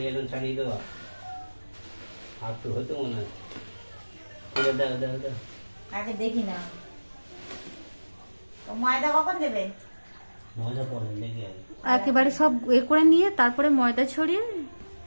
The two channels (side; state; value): both; inverted; correlation -1.00